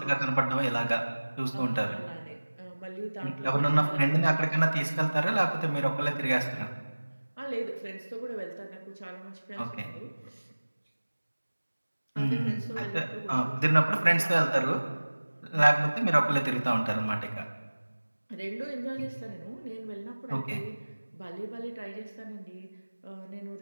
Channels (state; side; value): inverted; both; correlation -1.00